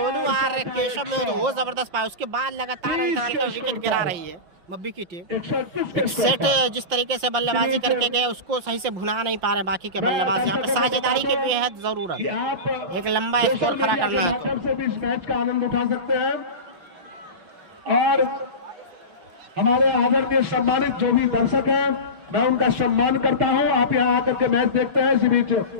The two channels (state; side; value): late; left; 5.7 ms